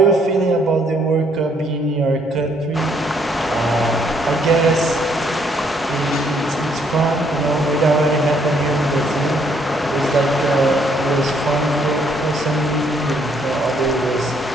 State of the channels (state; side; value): normal; both; correlation 0.68